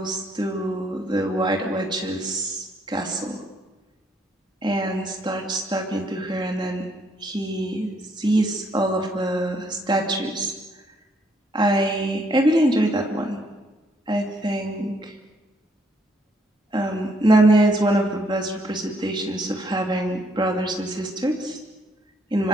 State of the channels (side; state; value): both; normal; correlation 0.70